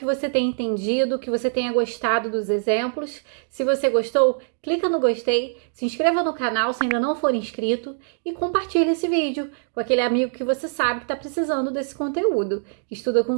você tenha entendido, que você tenha gostado dos exemplos. Se você gostou, clica no gostei, se inscreva no canal se ainda não for inscrito e compartilhe esse vídeo com aquele amigo que você sabe que está precisando desse conteúdo, que estuda com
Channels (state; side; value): silent; left; digital silence